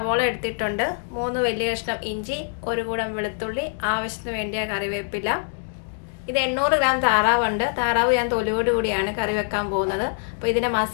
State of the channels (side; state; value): right; silent; digital silence